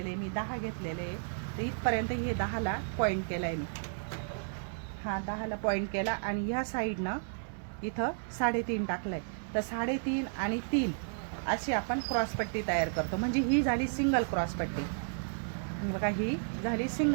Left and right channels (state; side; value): silent; left; 56 dB below the other